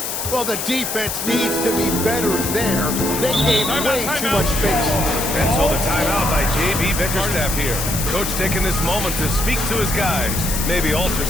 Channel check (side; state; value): left; noise; hiss, 3 dB below the sound